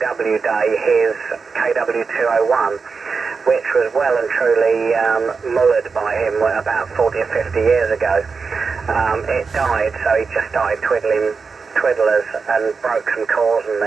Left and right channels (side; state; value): left; quieter; 5.0 dB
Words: Day his KW201, which was well and truly mullered by him about 40 or 50 years ago. It died, so he just started twiddling twiddlers and broke some cores and